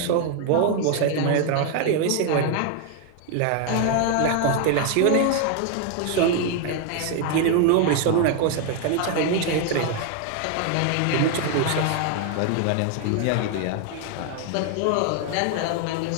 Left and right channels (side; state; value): both; different; correlation 0.00